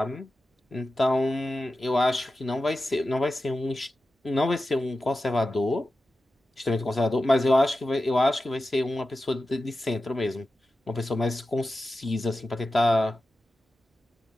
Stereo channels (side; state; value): both; normal; correlation 0.93